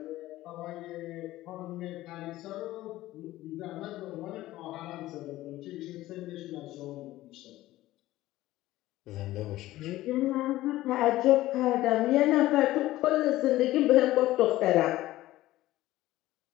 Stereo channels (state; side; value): quieter; right; 16.1 dB